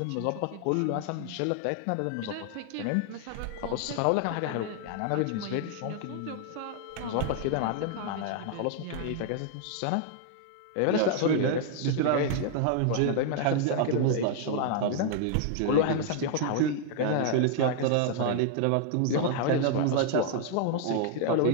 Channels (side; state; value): both; different; correlation 0.00